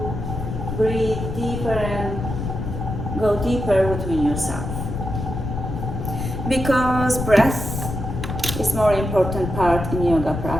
breathe deeper and go deeper within yourself. Because breath is more important part in yoga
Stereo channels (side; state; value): left; noise; rumble, 5 dB below the sound